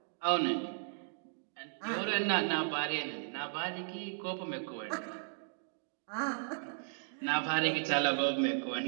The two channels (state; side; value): silent; left; digital silence